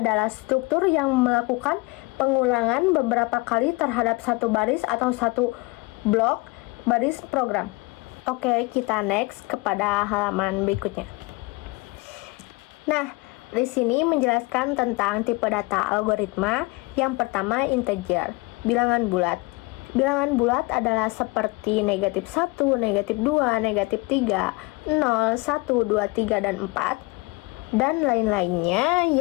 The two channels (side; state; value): right; quieter; 24.6 dB